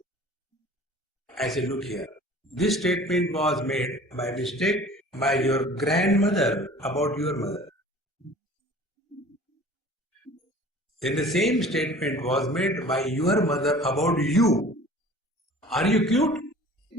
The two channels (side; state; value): both; normal; correlation 0.46